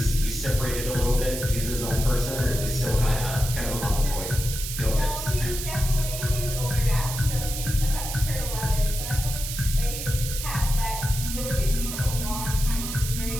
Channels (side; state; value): right; noise; hiss, 6 dB below the sound